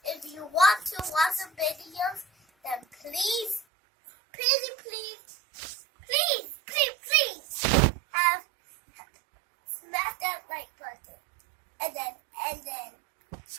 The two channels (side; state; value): left; drops out; at 3.7 s